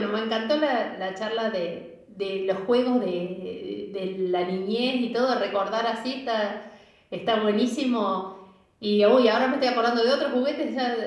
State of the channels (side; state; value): both; identical; correlation 1.00